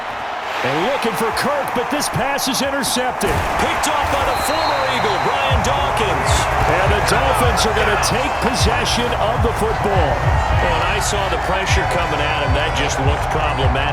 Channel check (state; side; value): identical; both; correlation 1.00